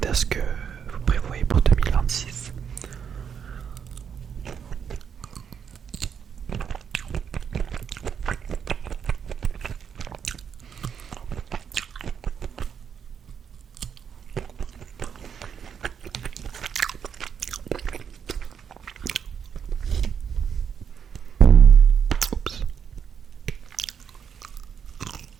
ce que vous prévoyez pour 2026. Oups.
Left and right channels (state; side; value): quieter; left; 7.5 dB